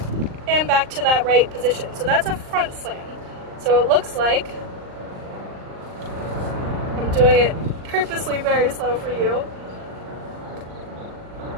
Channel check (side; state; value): left; late; 39 ms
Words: and back to that right position. So that's a front slam. So it looks like, I'm doing it purposely very slow for you.